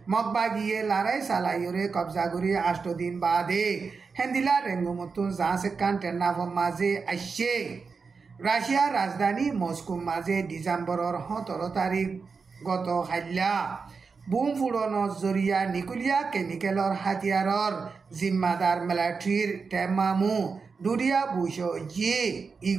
মগবাগিয়ে লড়াই চালাইয়রে কবজা করি 8 দিন বাদে হেন্দিল্লা রেঙ্গুমতুন জাঁসেকান টেন্নাফর মাঝে আসছে রাশিয়ার রাজধানী মস্কো মাঝে ডিসেম্বরের 17 তারিখ গত হাইলা বুম ফুড়নৰ জৰিয়া নিকুলিয়া কেমিকেলৰ হাতিয়াৰৰ জিম্মাদার মিলিটারির টেমামু দুরিয়া বুশো জি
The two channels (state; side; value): quieter; left; 5.0 dB